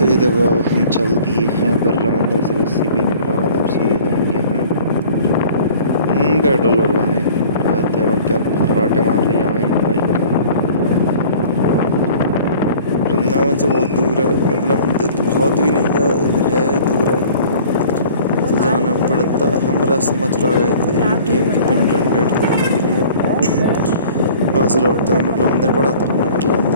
ये देखो अब हम चल दिए हैं बिरला मंदिर से लस्सी पीने के बाद अब सीधे जाएंगे हम पेट्रोल भरवाने। देखो क्या फर्राटे मार रही है हमारी बाइक। वृंदावन से बहुत दूर है बिरला मंदिर, तो बहुत भी नहीं है, दूर है तो जाना पड़ता है। हम रास्ते मथुरा गए थे ATM की पिन जनरेट करने के लिए। वहाँ से लौटते हुए बिरला मंदिर पड़ा, तो हमने बिरला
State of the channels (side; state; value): both; inverted; correlation -0.48